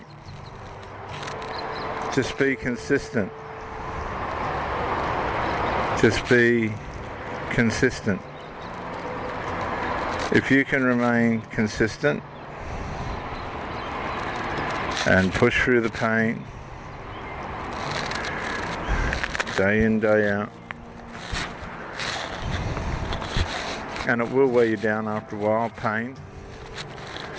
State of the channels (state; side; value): identical; both; correlation 1.00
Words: Just be consistent. Just be consistent. If you can remain consistent and push through the pain day in, day out, and it will wear you down after a while, pain.